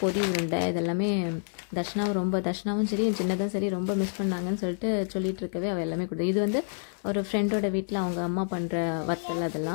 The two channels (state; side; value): silent; right; 58 dB below the other